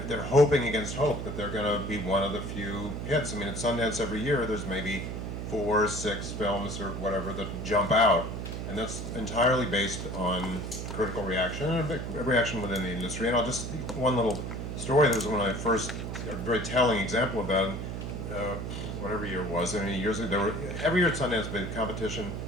hoping against hope that they're going to be one of the few hits. I mean, at Sundance every year, there's maybe 4 or 6 films or whatever that jump out, and that's entirely based on critical reaction and a reaction within the industry. And I'll just one little story that was one of my first, a very telling example of that. Whatever year it was, I mean, years ago, every year at Sundance, there was a competition.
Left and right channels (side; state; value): right; noise; hum, 5 dB below the sound